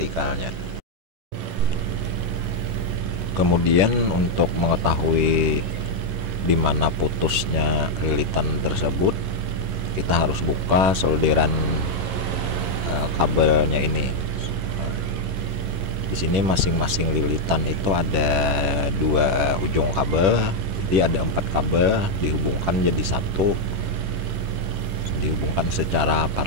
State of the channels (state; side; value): late; left; 10 ms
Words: Kemudian untuk mengetahui di mana putusnya lilitan tersebut, kita harus buka solderan kabelnya ini. Di sini masing-masing lilitan itu ada 2 ujung kabel, jadi ada 4 kabel dihubungkan jadi satu, dihubungkan secara